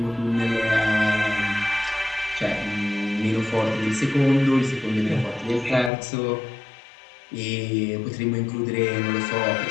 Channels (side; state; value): right; drops out; at 5.9 s